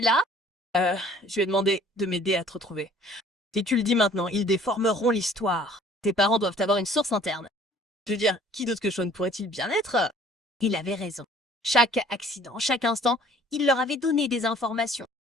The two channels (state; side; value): normal; both; correlation 0.54